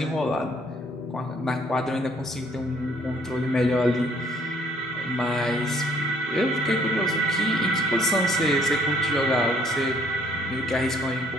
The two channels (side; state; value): both; normal; correlation 0.63